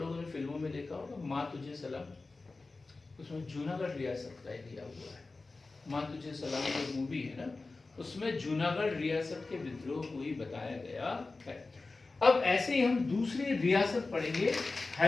ने फिल्मों में देखा होगा माँ तुझे सलाम, उसमें जूनागढ़ रियासत का दिया हुआ है। माँ तुझे सलाम जो मूवी है ना, उसमें जूनागढ़ रियासत के विद्रोह को ही बताया गया है। अब ऐसे ही हम दूसरी रियासत पढ़ेंगे,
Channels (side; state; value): right; quieter; 3.6 dB